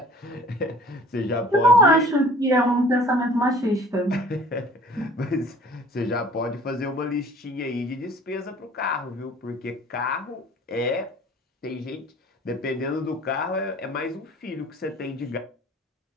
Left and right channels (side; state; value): both; normal; correlation 0.49